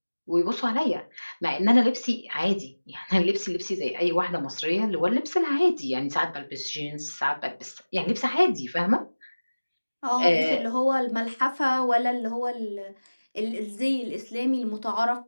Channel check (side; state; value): both; inverted; correlation -1.00